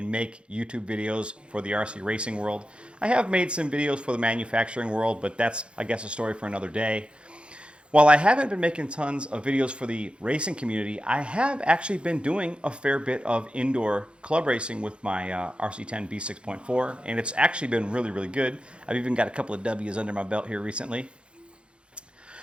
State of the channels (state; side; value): late; left; 0.057 ms